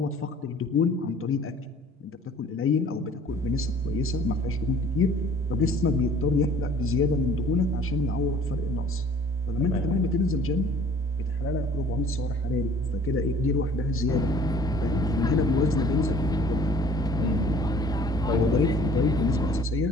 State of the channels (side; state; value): both; normal; correlation 0.52